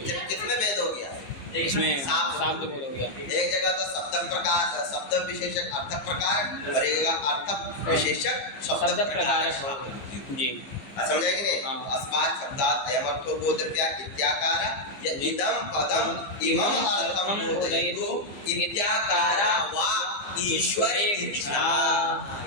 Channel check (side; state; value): right; late; 15 ms